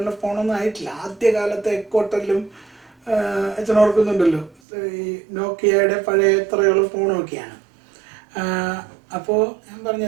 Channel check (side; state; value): left; drops out; at 4.5 s